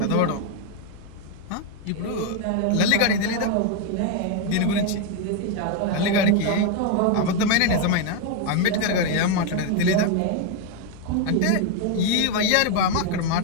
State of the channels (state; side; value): different; both; correlation 0.01